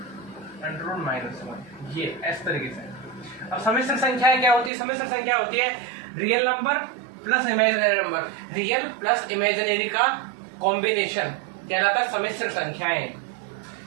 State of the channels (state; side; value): drops out; left; at 4.7 s